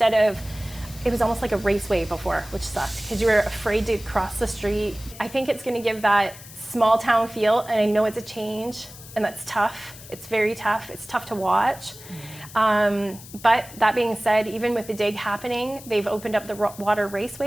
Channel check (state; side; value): noise; left; hiss, 17 dB below the sound